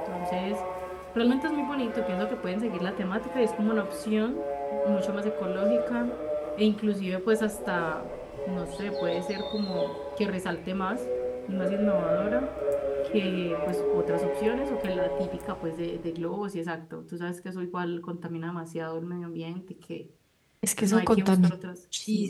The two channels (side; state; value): both; identical; correlation 1.00